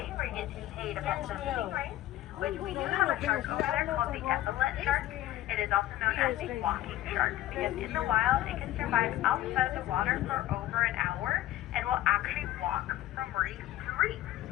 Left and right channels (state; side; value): quieter; right; 14.6 dB